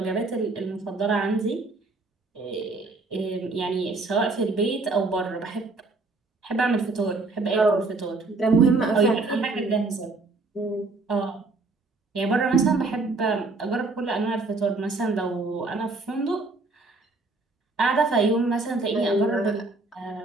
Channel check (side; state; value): left; quieter; 3.5 dB